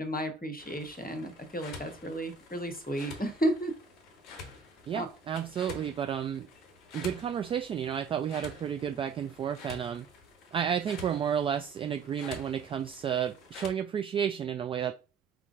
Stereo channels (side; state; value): left; quieter; 5.5 dB